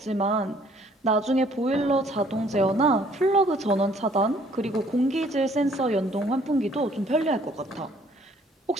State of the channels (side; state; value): both; normal; correlation 0.61